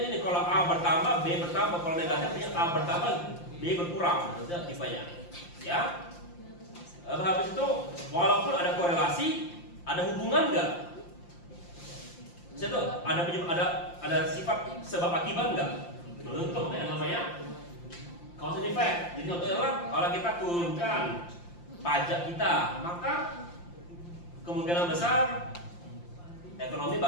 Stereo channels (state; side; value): late; right; 5.8 ms